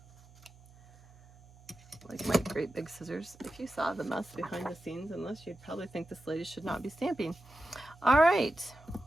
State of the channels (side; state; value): right; noise; hum, 24 dB below the sound